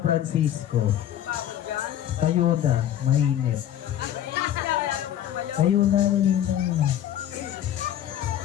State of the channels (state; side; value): quieter; right; 11.3 dB